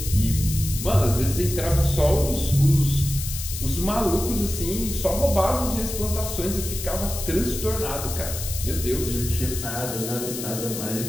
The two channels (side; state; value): left; noise; hiss, 7 dB below the sound